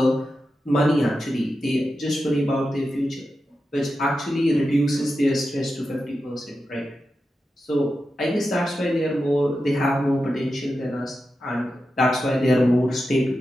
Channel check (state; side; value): normal; both; correlation 0.90